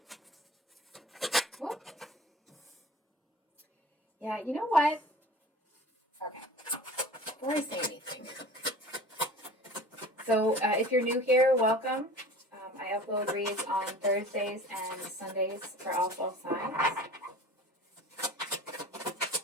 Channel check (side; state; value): both; normal; correlation 0.41